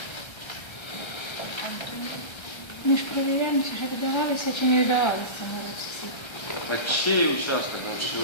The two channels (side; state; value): right; late; 1.3 ms